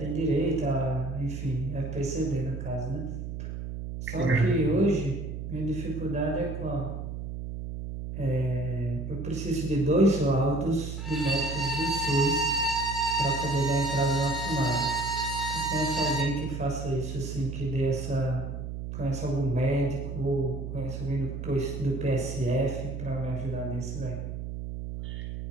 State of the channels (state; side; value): noise; right; hum, 6 dB below the sound